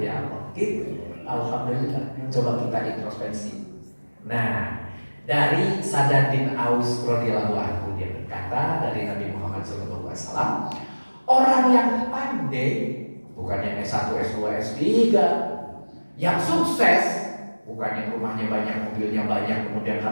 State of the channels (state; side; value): inverted; both; correlation -1.00